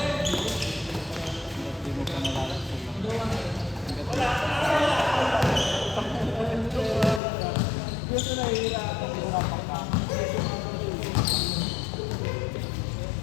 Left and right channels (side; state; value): right; drops out; at 7.2 s